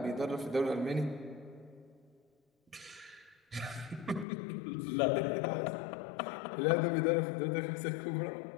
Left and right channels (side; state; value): right; drops out; at 4.2 s